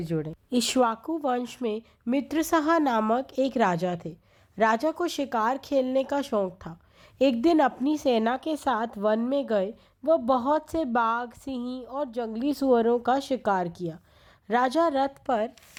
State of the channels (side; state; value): both; identical; correlation 1.00